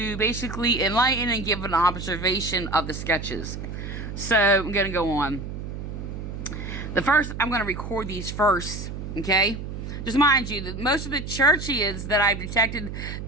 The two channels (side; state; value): right; noise; hum, 7 dB below the sound